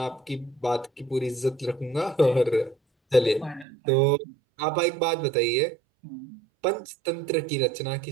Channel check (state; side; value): drops out; left; at 3.7 s